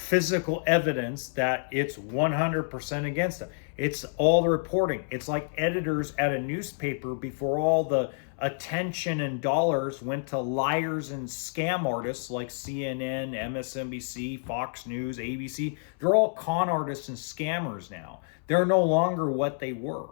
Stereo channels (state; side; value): silent; right; 59 dB below the other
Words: evidence that it's 100% against them. It's all the reporting. It's like editors at a newspaper before all the attention and dollars went to liars and scam artists like CNN, MSNBC, Fox News, ABC. They're all con artists and scammers now. They're no longer what they were.